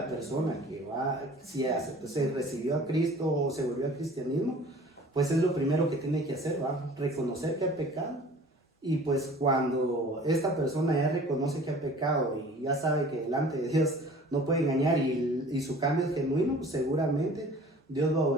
persona que va, si se recibió a Cristo o se volvió al cristianismo, pues es lo primero que tiene que hacer, ¿va? Reconocer que ha pecado. Y pues cuando esta persona ya reconoce que ha pecado y ya sabe que delante de Dios no puede engañar y su cambio es genuino, pues seguramente Dios va a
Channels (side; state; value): both; normal; correlation 0.47